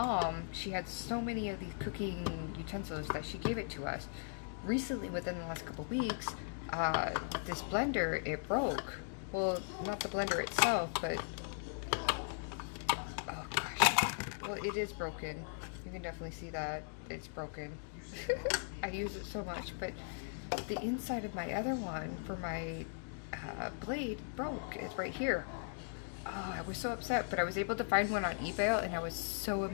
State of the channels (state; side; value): silent; right; digital silence